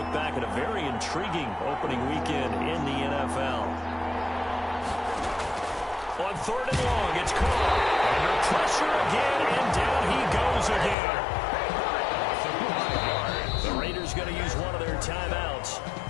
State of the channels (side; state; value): right; drops out; at 11.0 s